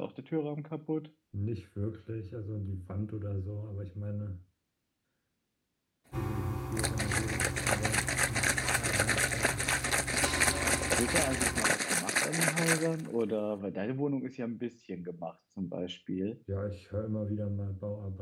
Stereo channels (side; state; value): both; identical; correlation 1.00